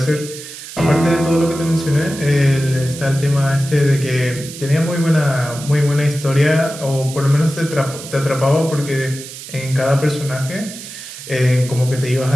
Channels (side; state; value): right; noise; hiss, 13 dB below the sound